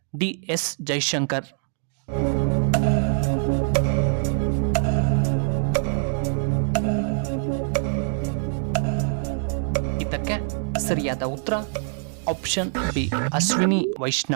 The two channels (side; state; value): left; silent; 60 dB below the other